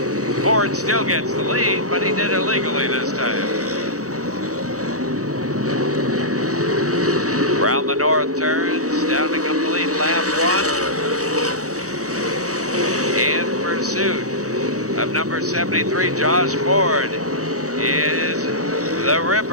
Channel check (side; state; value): left; late; 0.66 ms